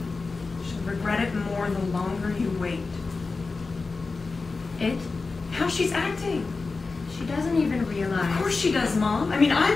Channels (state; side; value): quieter; right; 4.0 dB